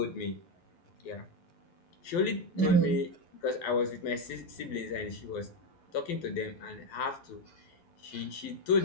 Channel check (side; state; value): right; late; 12 ms